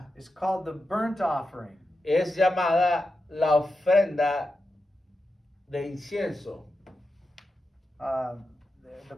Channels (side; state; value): both; normal; correlation 0.89